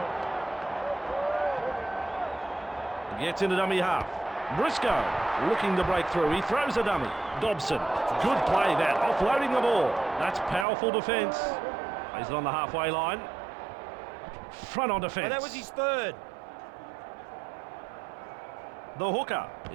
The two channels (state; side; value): drops out; left; at 10.7 s